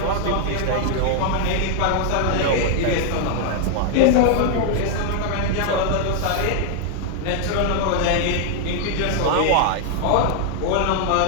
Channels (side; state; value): both; different; correlation 0.00